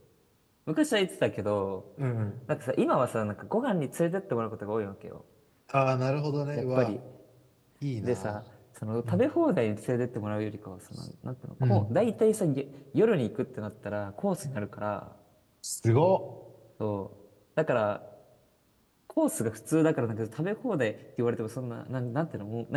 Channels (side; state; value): both; identical; correlation 1.00